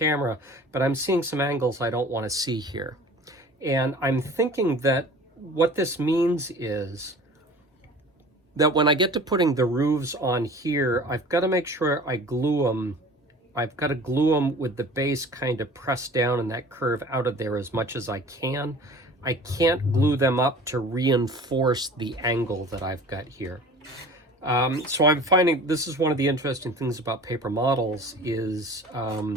but I'm seeing some angles I don't want to see here. And I'm thinking that what this means is that when I get to putting the roofs on here, I've got to make sure I glue them I've got to glue them with the base kind of pressed down and that curve out of there as much as I can. I can't glue them up to reinforce the angle that I've got here. So I'm finding this is one of the interesting things about paper models is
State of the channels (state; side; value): normal; both; correlation 0.43